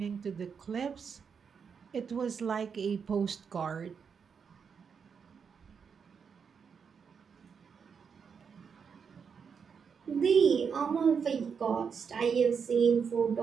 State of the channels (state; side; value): quieter; left; 6.4 dB